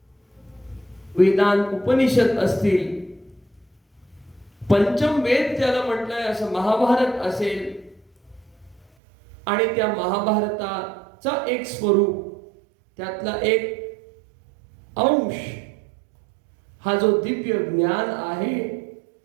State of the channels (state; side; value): drops out; left; at 8.8 s